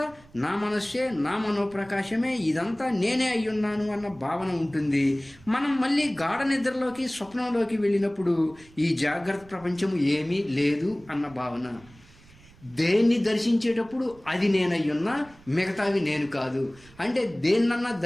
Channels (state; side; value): noise; right; rumble, 25 dB below the sound